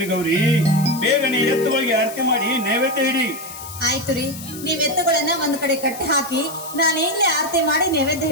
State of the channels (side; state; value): left; noise; hiss, 13 dB below the sound